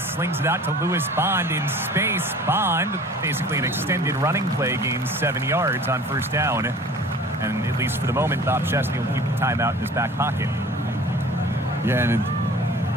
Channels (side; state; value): both; normal; correlation 0.45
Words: slings it out to Lewis Bond in space. Bond, basically an extended running play, gains 7 yards on first down. And at least for the moment, Bob Chesney will keep the timeout in his back pocket. Yeah, and